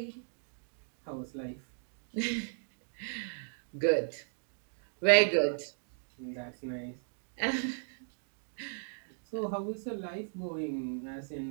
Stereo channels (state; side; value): silent; left; digital silence